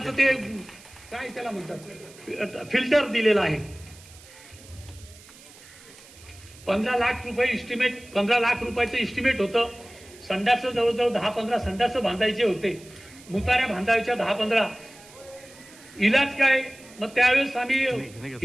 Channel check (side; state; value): right; noise; hiss, 22 dB below the sound